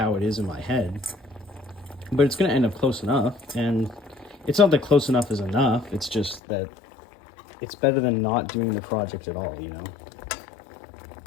it is in my head. But it's going to end up close enough. And it's not that close enough is enough. It's just that it's better than not doing the project at all, you know?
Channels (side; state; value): right; drops out; at 6.4 s